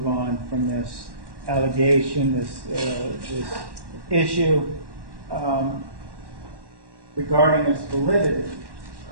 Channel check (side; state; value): left; late; 1.1 ms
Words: on from this allegation, this issue regarding its validity.